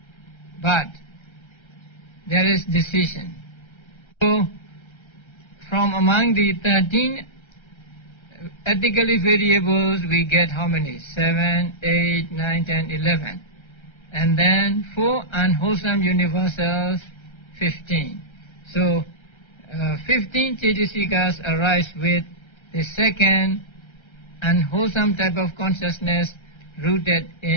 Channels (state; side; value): late; right; 1.3 ms